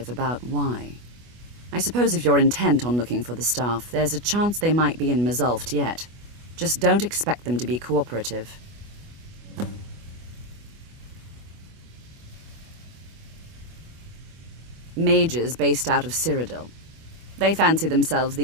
about why. I suppose if you're intent on looking for the staff, there's a chance they might be in Mzulft yet. Just don't expect them to be cooperative. Mages based out of Cyrodiil. They fancy themselves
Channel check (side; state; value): left; late; 25 ms